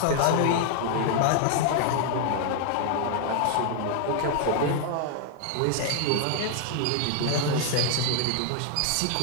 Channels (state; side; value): different; both; correlation 0.00